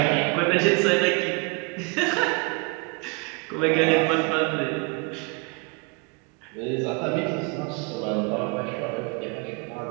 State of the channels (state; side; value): quieter; left; 30.9 dB